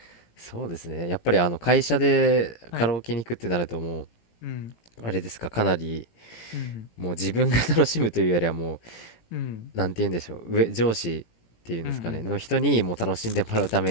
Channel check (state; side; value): late; right; 18 ms